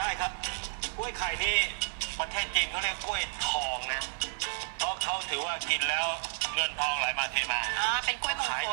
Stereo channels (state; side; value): silent; left; 57 dB below the other